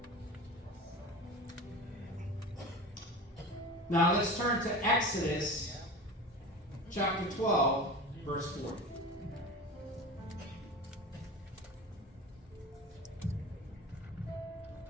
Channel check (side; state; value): both; normal; correlation 0.32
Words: Now let's turn to Exodus chapter 12, verse 40.